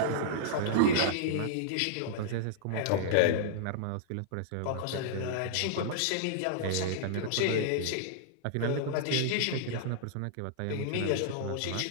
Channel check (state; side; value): different; both; correlation -0.01